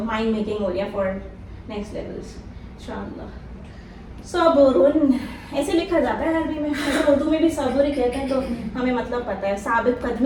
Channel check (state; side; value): identical; both; correlation 1.00